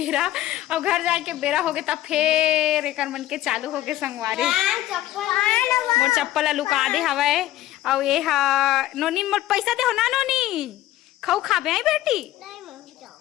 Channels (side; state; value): right; quieter; 14.6 dB